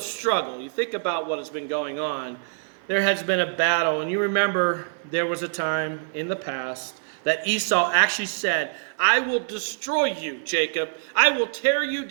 You think about what has been going on. There has been a battle, and you remember there was a time in the past that Esau actually said, I will destroy you, Jacob. I will tear you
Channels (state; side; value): silent; left; 62 dB below the other